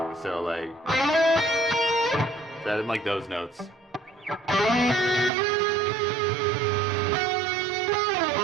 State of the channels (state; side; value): drops out; left; at 5.3 s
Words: So like that in like those notes.